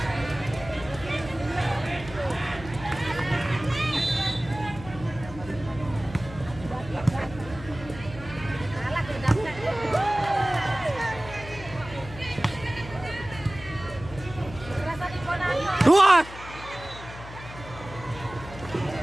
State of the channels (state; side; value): noise; left; hum, 14 dB below the sound